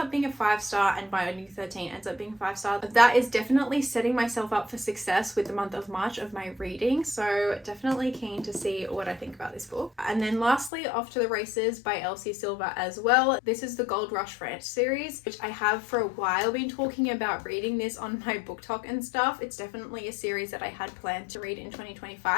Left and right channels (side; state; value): right; drops out; at 10.7 s